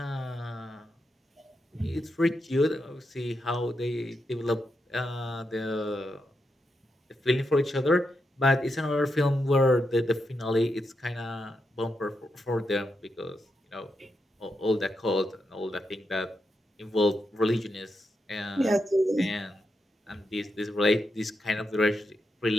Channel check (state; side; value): normal; both; correlation 0.84